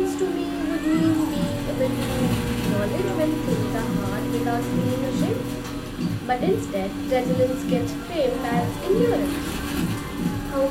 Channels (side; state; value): both; identical; correlation 1.00